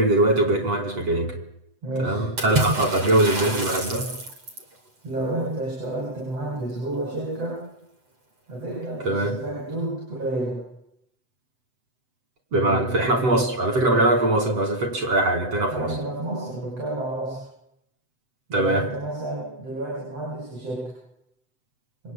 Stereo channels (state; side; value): late; left; 7.9 ms